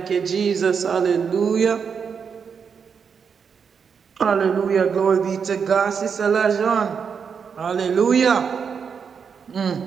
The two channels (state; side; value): quieter; left; 6.4 dB